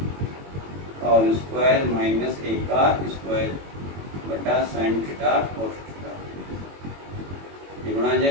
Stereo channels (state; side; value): late; left; 21 ms